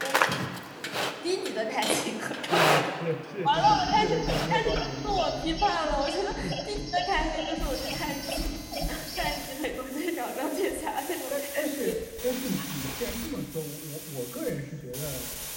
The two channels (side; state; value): both; identical; correlation 1.00